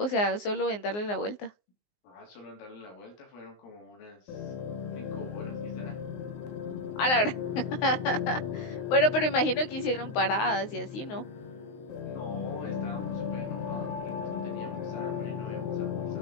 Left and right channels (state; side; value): late; right; 19 ms